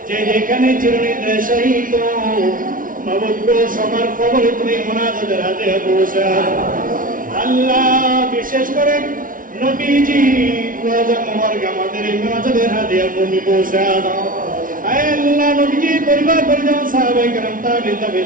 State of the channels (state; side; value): late; left; 0.39 ms